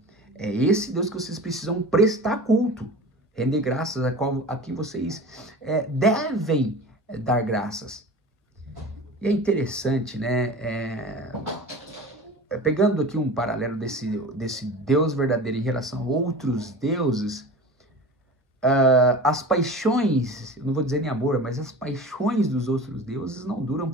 esse Deus que vocês precisam prestar culto, render graças, a quem vocês devem dar graças. E é interessante, né? Pegando aqui um paralelo desse Deus verdadeiro em relação a outros deuses, as paixões, eu não vou dizer nem amor, mas as paixões dos outros deuses não duram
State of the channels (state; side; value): normal; both; correlation 0.35